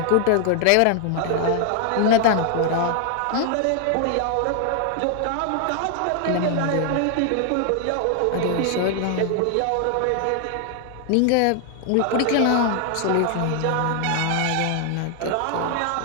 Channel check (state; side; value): different; both; correlation 0.00